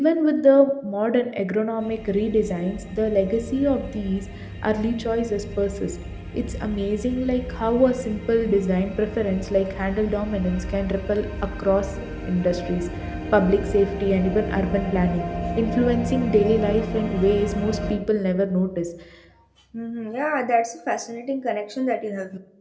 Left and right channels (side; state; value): both; identical; correlation 1.00